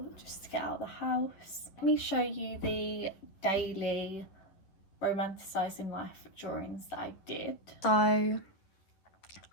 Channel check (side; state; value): right; late; 11 ms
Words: just to get out of the house. Let me show you the daily romanticising life drawings that I did. So